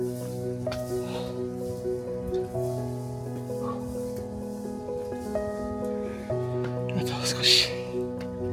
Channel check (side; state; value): both; identical; correlation 1.00